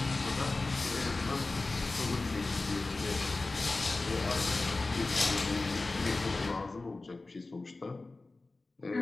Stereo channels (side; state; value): right; quieter; 3.3 dB